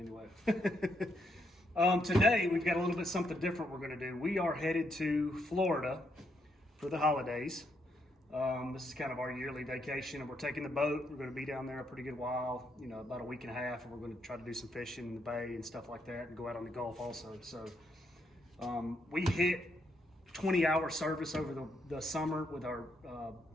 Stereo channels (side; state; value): both; normal; correlation 0.77